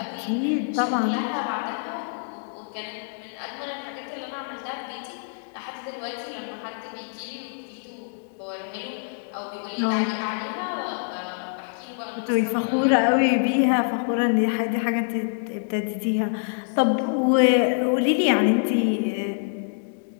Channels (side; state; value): right; silent; digital silence